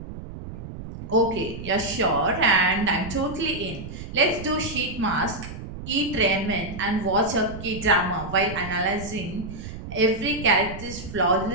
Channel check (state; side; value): noise; right; rumble, 11 dB below the sound